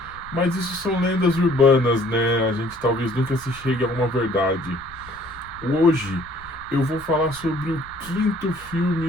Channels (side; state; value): left; noise; rumble, 21 dB below the sound